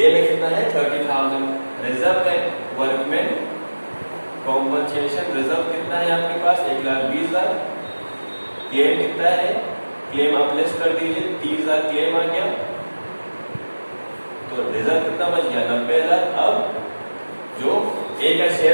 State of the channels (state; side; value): inverted; both; correlation -1.00